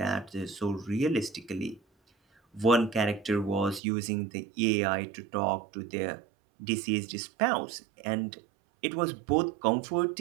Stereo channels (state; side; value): drops out; left; at 3.8 s